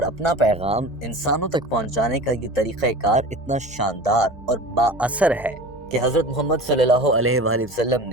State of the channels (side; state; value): both; normal; correlation 0.35